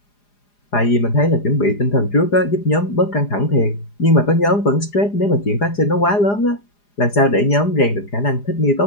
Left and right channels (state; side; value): late; right; 4.9 ms